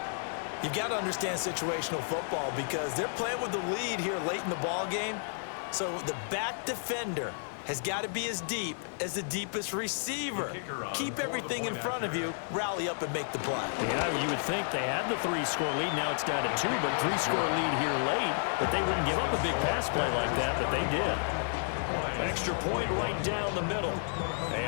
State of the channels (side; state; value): right; silent; 57 dB below the other